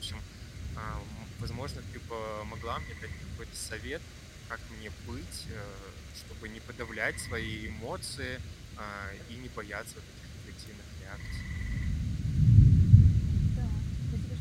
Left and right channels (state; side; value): identical; both; correlation 1.00